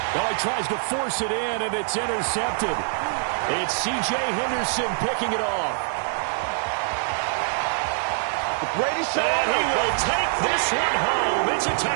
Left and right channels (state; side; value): silent; left; digital silence